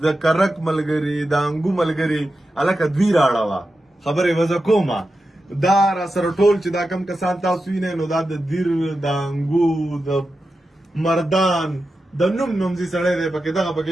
د کرک ملګري د انګو ملګري هلکه دوی راړه خبرې وزه کومه دا را سره ټول چې دا کم کسان تاسو وینئ نو دا د دیر د انګو د مردان د نوم زی سړی دی پکې دغه پکې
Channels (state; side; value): normal; both; correlation 0.91